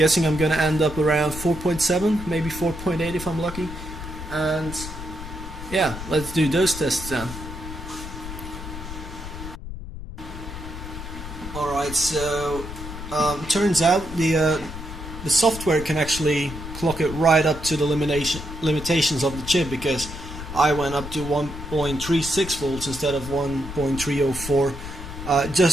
I'm going to end up around 4.7, maybe 4.8 if I'm lucky. And yeah, let's do those tests then. Alright, so turns out the software can actually clock it right up to the limitations of the chip, because I went up to 1.36 volts instead of 1.304.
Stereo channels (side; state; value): left; noise; rumble, 10 dB below the sound